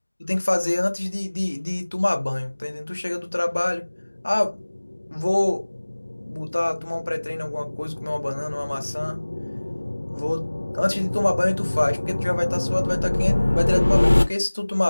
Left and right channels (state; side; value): inverted; both; correlation -1.00